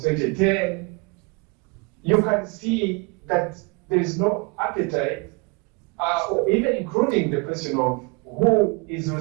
2010, you can see that there is no appetite, or even including the question of who is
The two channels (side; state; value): left; quieter; 29.5 dB